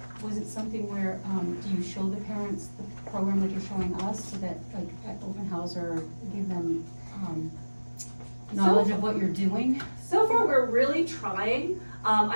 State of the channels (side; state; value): both; inverted; correlation -1.00